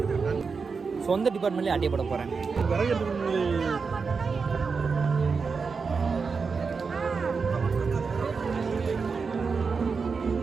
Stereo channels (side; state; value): left; quieter; 5.1 dB